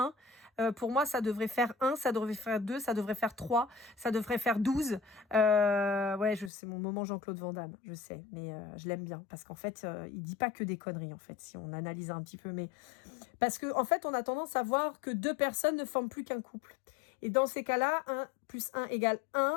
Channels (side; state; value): right; drops out; at 6.5 s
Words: Pour moi, ça devrait faire 1, ça devrait faire 2, ça devrait faire 3, ça devrait faire 12. Ouais, c'est mon moment Jean-Claude Van Damme, je sais, mais je l'aime bien parce qu'en fait, il dit pas que des conneries en fait, si on analyse un petit peu, mais parce que en fait, on a tendance à voir que 2 personnes ne forment plus qu'un couple. Et dans ces cas-là, 1 + 1 =